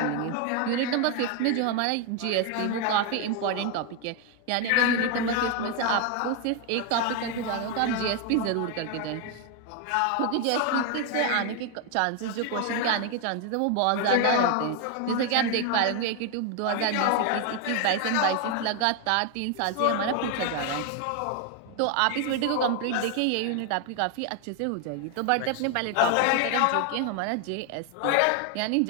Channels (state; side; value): different; both; correlation 0.01